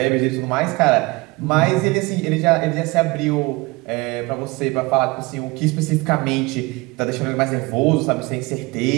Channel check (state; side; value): quieter; left; 24.0 dB